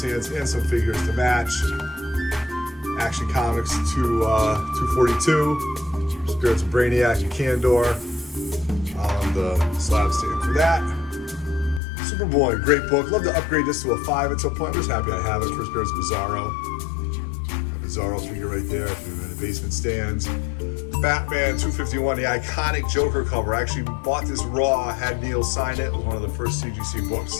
and some figures to match. Action Comics 242, Spirits of Brainiac and Candor on the slab stand for that. Superboy, great book. Love to upgrade this to a 5 at some point. I'm just happy I have it for Spirits of Bizarro. A Bizarro figure right there if you're in the basement stands. Batman 251, the iconic Joker cover. I actually bought this raw, had Neil sign it. It was one of the first CGC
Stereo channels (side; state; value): right; drops out; at 11.8 s